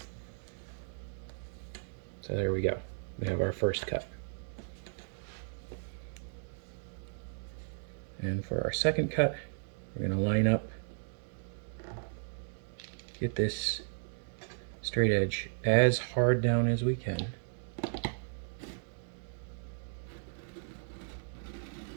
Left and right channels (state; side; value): silent; left; digital silence